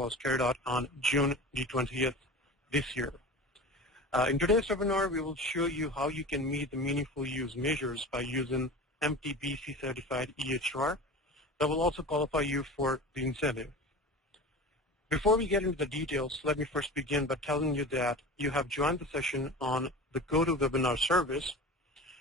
carried out on June the 20th this year. In today's webinar, we will show you how you can meet the Meaningful Use measures by using MTBC certified EHR that will also qualify you for the incentive. Before we get into the details, let me first begin by telling you that you have joined the session on the GoToWebinar service.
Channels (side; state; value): both; normal; correlation 0.33